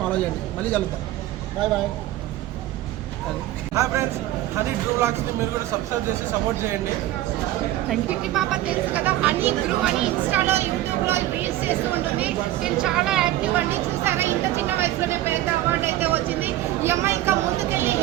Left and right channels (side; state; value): left; quieter; 14.7 dB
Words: ఫాలో చేయండి. మళ్ళీ కలుగుతాం. Bye bye. Hi friends, honey through వ్లాగ్స్ని మీరు కూడా సబ్స్క్రైబ్ చేసి సపోర్ట్ చేయండి. కిట్టి పాప తెలుసు కదా, హనీ త్రూ అని ఇన్స్టాలో యూట్యూబ్లో రీల్స్ చేస్తూ ఉంటుంది. నేను చాలా యాక్టివ్ అండి. చూసారా, ఇంత చిన్న వయసులోనే పెద్ద అవార్డు అయితే వచ్చింది. ఈ అమ్మాయి ఇంకా ముందుకెళ్ళి